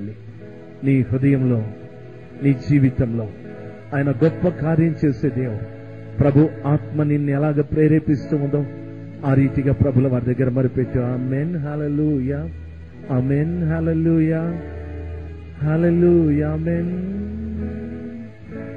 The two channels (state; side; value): identical; both; correlation 1.00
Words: నీ హృదయంలో, నీ జీవితంలో ఆయన గొప్ప కార్యం చేసే దేవుడు. ప్రభు ఆత్మ నిన్ను ఎలాగ ప్రేరేపిస్తూ ఉందో ఆ రీతిగా ప్రభుల వారి దగ్గర మరిపెట్టు. ఆమేన్. హల్లెలూయా. ఆమేన్. హల్లెలూయా. హల్లెలూయా. ఆమేన్.